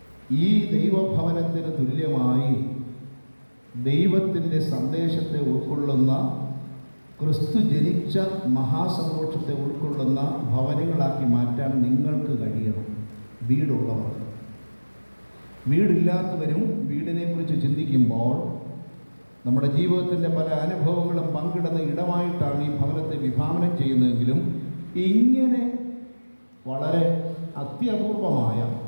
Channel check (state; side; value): inverted; both; correlation -1.00